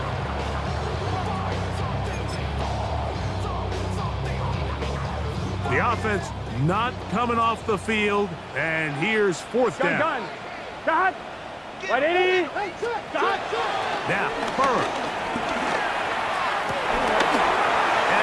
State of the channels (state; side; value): identical; both; correlation 1.00